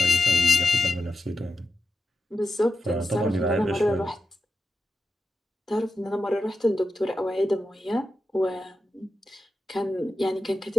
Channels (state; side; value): normal; both; correlation 0.89